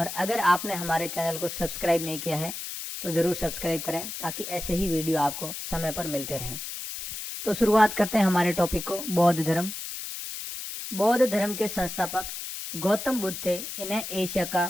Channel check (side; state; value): left; noise; hiss, 7 dB below the sound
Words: अगर आपने हमारे चैनल को सब्सक्राइब नहीं किया है तो ज़रूर सब्सक्राइब करें ताकि ऐसे ही वीडियो आपको समय पर मिलते रहें। तो शुरुआत करते हैं हमारे टॉपिक को। बौद्ध धर्म। बौद्ध धर्म के संस्थापक गौतम बुद्ध थे। इन्हें एशिया